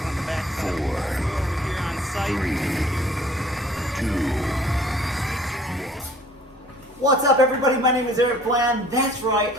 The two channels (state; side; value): normal; both; correlation 0.54